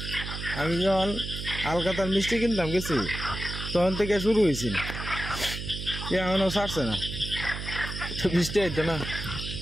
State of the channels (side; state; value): right; noise; hum, 7 dB below the sound